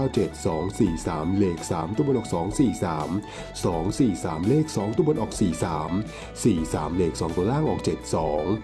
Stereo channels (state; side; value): identical; both; correlation 1.00